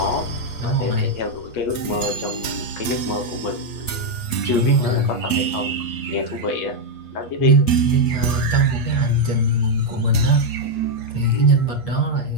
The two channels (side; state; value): right; late; 8.3 ms